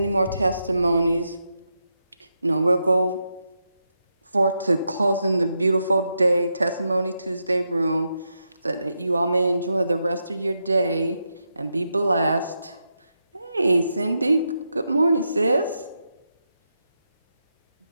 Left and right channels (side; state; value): both; inverted; correlation -0.85